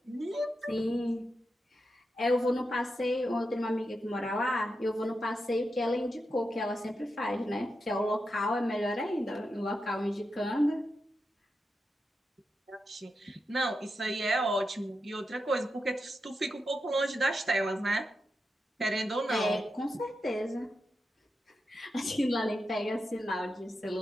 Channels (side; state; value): both; normal; correlation 0.88